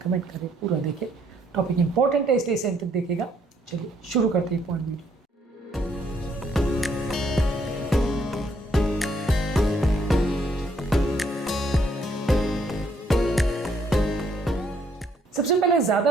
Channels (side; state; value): both; normal; correlation 0.69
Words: करें, पूरा देखें। टॉपिक इंपॉर्टेंट है इसलिए इसे अंत तक देखेगा। चलिए शुरू करते हैं पॉइंट वीडियो। सबसे पहले